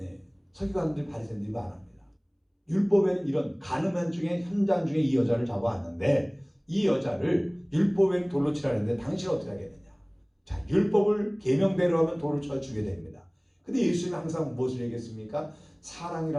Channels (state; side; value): identical; both; correlation 1.00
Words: 서기관들 바리새인들이 말합니다. 율법에는 이런 가늠한 중에 현장 중에 이 여자를 잡아왔는데 이 여자를 율법에는 돌로 치라는데 당신은 어떻게 하겠느냐. 자, 율법을 계명대로 하면 돌을 쳐 주게 됩니다. 근데 예수님이 항상 무엇을 얘기했습니까?